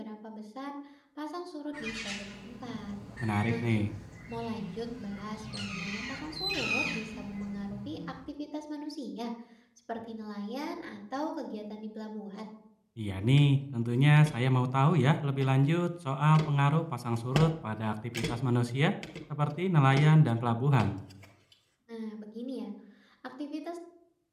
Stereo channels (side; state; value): both; identical; correlation 1.00